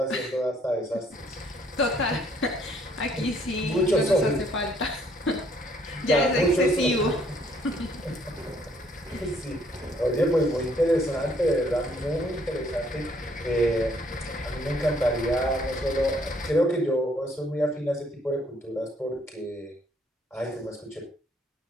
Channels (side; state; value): both; normal; correlation 0.65